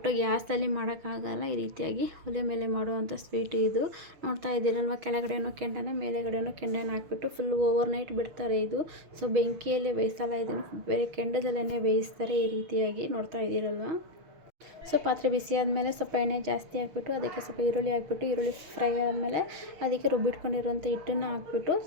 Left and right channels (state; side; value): late; left; 6.3 ms